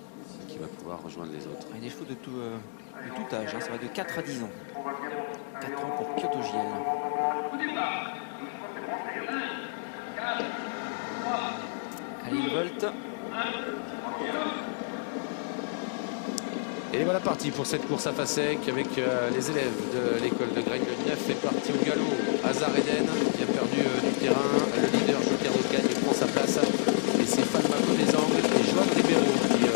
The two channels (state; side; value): silent; right; digital silence